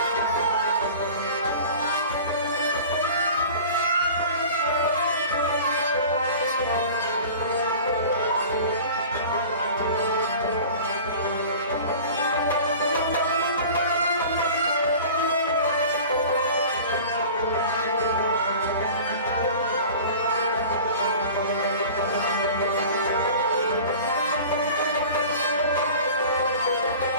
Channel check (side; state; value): both; inverted; correlation -0.40